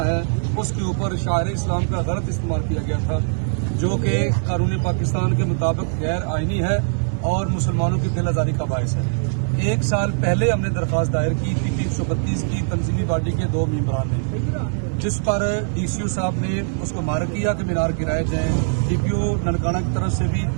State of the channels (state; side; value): silent; left; digital silence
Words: ہے اس کے اوپر شاعر اسلام کا غلط استعمال کیا گیا تھا، جو کہ قانون پاکستان کے مطابق غیر آئینی ہے اور مسلمانوں کی دل آزاری کا باعث ہے۔ ایک سال پہلے ہم نے درخواست دائر کی تھی 332 کی تنظیمی باڈی کے 2 ممبران نے، جس پر ڈی سی او صاحب نے اس کو مارک کیا کہ مینار گرائے جائیں۔ ڈی پی او ننکانہ کی طرف سے بھی